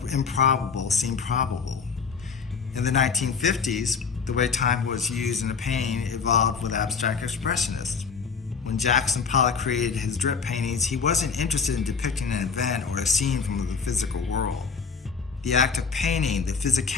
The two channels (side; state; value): right; quieter; 5.5 dB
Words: improbable seem probable. In the 1950s, the way time was used in a painting evolved with abstract expressionists. When Jackson Pollock created his drip paintings, he wasn't interested in depicting an event or a scene from the physical world. The act of painting, the